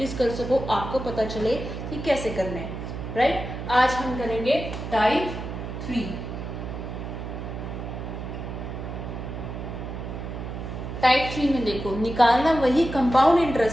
कर सको, आपको पता चले कि कैसे करने हैं, राइट। आज हम करेंगे टाइप 3। टाइप 3 में देखो, निकालना वही कंपाउंड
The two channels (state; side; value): noise; right; hum, 7 dB below the sound